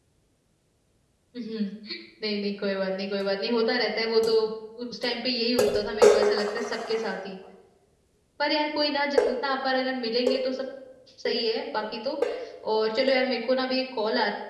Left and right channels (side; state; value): both; identical; correlation 1.00